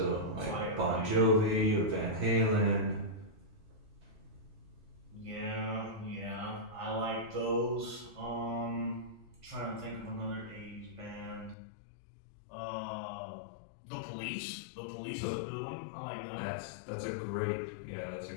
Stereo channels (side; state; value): right; drops out; at 11.6 s